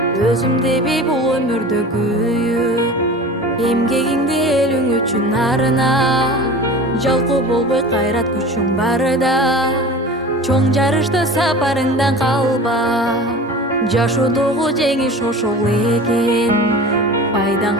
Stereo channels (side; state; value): both; normal; correlation 0.36